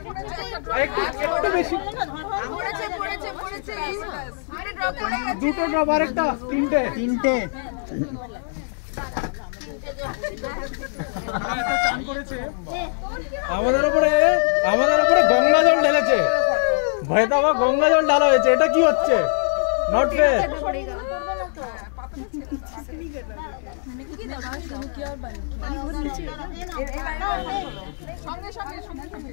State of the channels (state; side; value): silent; right; digital silence